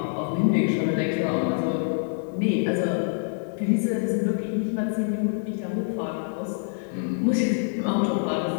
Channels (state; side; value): silent; right; 61 dB below the other